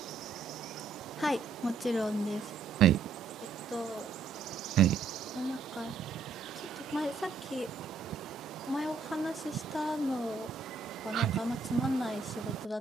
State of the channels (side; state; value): left; quieter; 4.7 dB